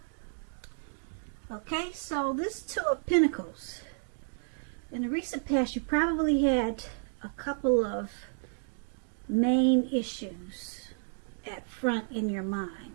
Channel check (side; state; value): left; silent; digital silence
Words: Okay, so this Two of Pentacles. In the recent past, you probably had a couple of main issues at front in your mind.